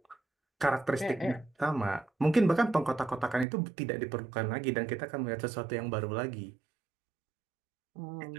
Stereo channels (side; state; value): left; drops out; at 3.5 s